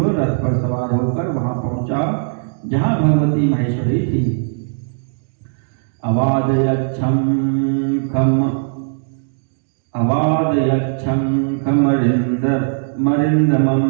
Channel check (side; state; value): left; silent; digital silence